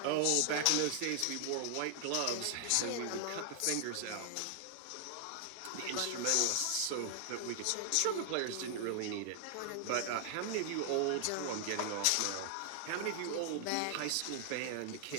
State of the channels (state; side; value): different; both; correlation 0.00